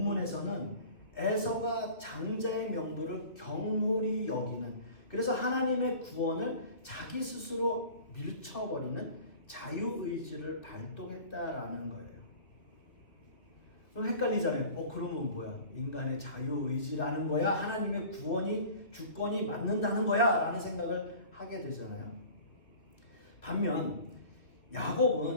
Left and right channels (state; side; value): late; right; 2.5 ms